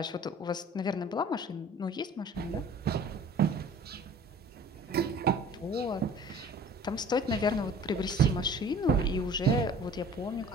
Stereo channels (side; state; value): both; normal; correlation 0.48